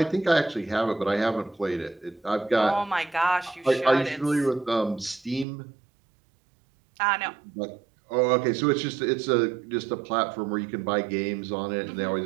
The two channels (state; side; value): drops out; left; at 5.5 s